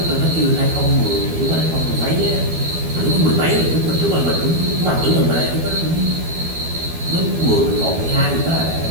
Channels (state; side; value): late; left; 12 ms